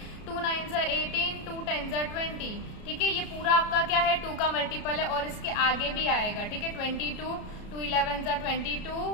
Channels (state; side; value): late; right; 33 ms